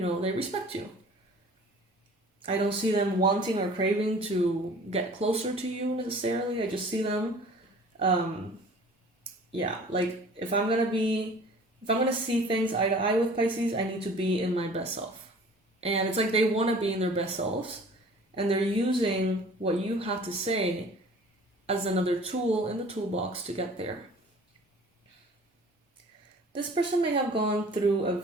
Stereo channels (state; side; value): normal; both; correlation 0.47